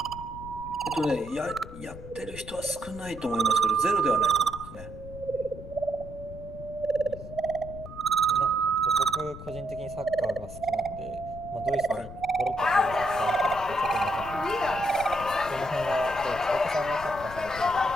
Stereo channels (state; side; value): noise; left; rumble, 13 dB below the sound